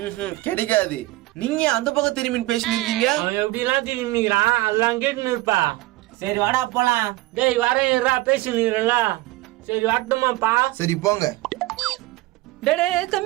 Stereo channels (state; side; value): quieter; left; 19.2 dB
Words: கிடைக்காது. நீங்க அந்த பக்கம் திரும்பி பேசினீங்க. அவன் எப்படி எல்லாம் திரும்பிக்கிறான், அதெல்லாம் கேட்டுன்னு இருப்பா. சரி வாடா போலாம். டேய் வரேன்டா, பேசினுறல. சரி வரட்டுமாப்பா? சரி போங்க. டேய்